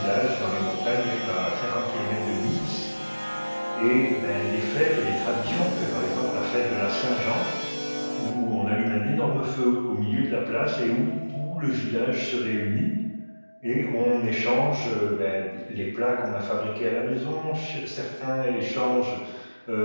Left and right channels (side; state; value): both; inverted; correlation -1.00